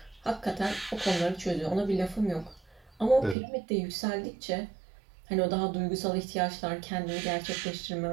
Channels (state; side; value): drops out; left; at 3.4 s